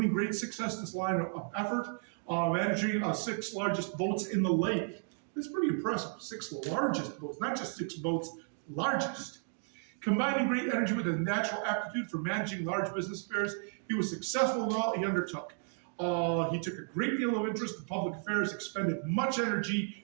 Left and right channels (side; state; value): left; silent; 55 dB below the other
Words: great success in this line of effort, managing 6 largest boats in the lake. That's pretty impressive. 6 largest boats, not just 6 boats, largest. Combining great energy with a natural aptitude for managing large business affairs, he was successful in all he undertook. He took a great deal of interest in public affairs, expended much